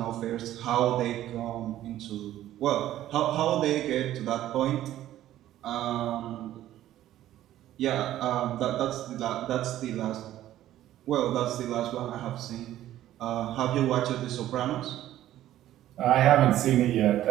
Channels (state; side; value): quieter; left; 13.2 dB